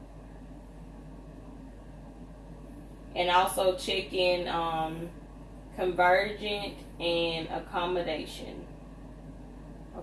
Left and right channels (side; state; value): both; identical; correlation 1.00